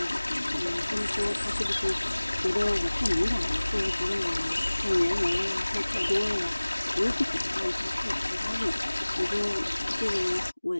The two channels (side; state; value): both; inverted; correlation -1.00